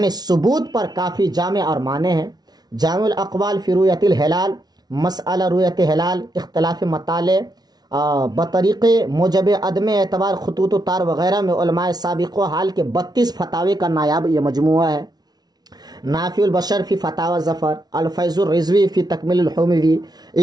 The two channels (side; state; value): left; late; 0.19 ms